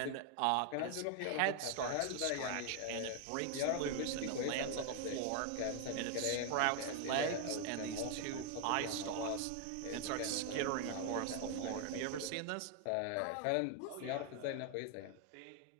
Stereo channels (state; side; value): different; both; correlation 0.00